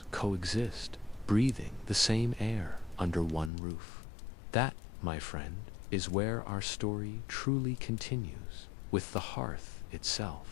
coexist, breathing the same air under one roof? That, my friend, is where our story truly continues, with the hearth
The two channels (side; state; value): right; drops out; at 3.5 s